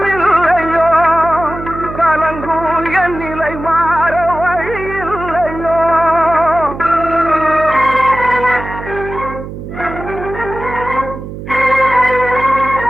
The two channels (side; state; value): right; noise; hum, 10 dB below the sound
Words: கலங்கும் என் நிலை மாற வழியில்லையோ.